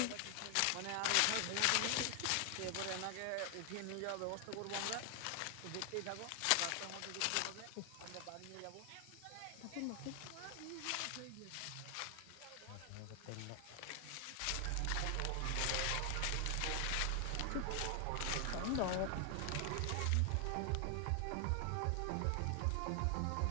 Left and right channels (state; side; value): different; both; correlation 0.00